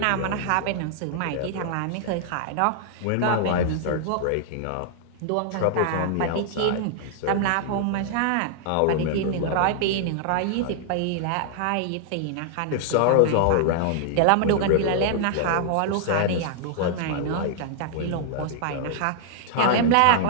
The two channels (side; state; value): both; different; correlation -0.01